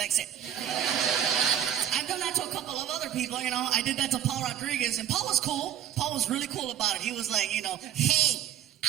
it. I've done that to a couple of other people, you know. I did that to Paul Rodriguez, and Paul was cool. Paul was really cool about it. He was like, you know, Hey,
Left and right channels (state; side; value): quieter; left; 10.5 dB